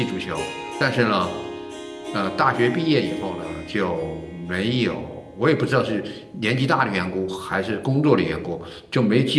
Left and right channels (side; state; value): both; identical; correlation 1.00